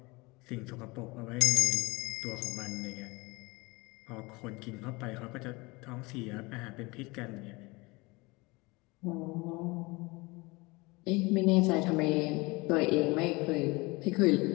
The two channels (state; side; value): quieter; right; 24.6 dB